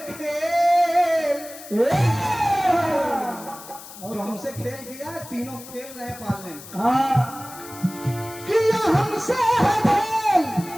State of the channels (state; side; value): noise; left; hiss, 16 dB below the sound